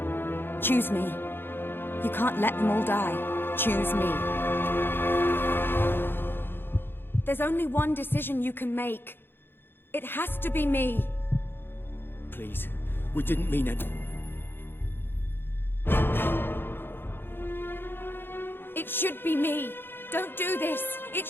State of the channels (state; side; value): late; right; 0.10 ms